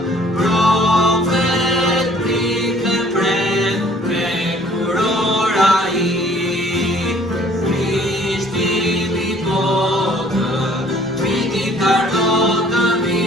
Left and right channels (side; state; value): both; normal; correlation 0.57